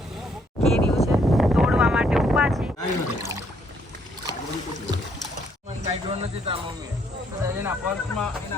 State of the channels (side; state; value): both; normal; correlation 0.69